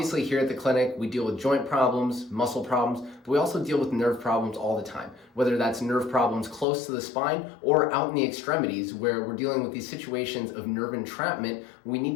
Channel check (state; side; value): drops out; right; at 6.7 s